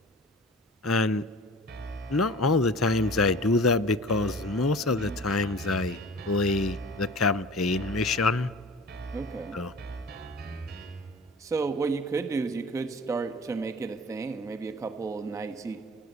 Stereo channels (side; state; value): both; normal; correlation 0.41